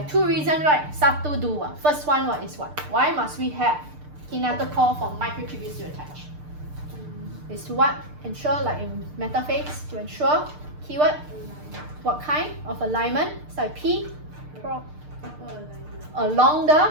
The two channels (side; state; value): left; late; 6.7 ms